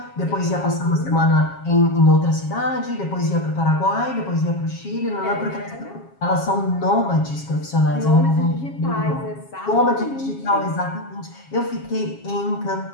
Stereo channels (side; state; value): right; late; 7.3 ms